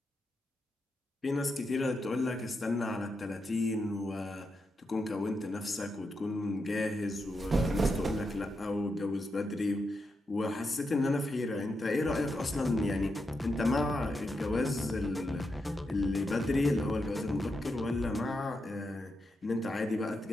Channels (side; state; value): both; normal; correlation 0.85